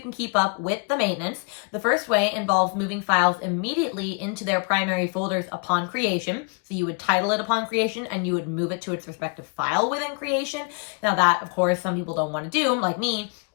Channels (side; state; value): right; quieter; 36.2 dB